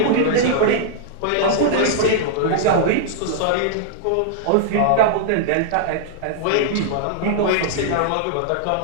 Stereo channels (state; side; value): different; both; correlation -0.01